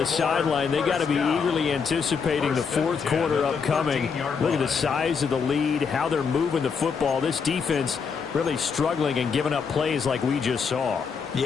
sideline, they got to be eagerly anticipating the 4th quarter upcoming. Look at the size of the lead, how they're moving the football. This defense really struggling and giving up plays like we just saw.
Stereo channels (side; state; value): right; quieter; 5.9 dB